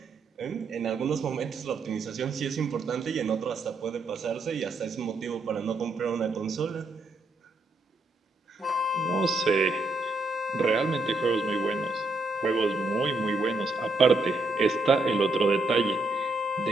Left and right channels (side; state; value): left; quieter; 3.0 dB